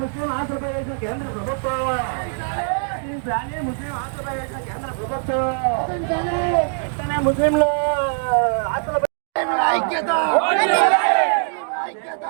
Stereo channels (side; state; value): left; silent; 64 dB below the other